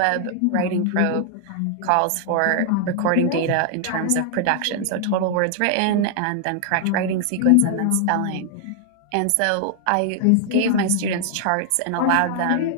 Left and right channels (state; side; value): different; both; correlation 0.00